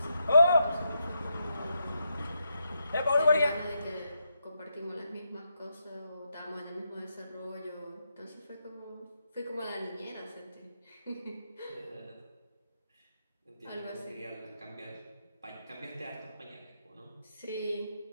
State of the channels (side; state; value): both; inverted; correlation -0.82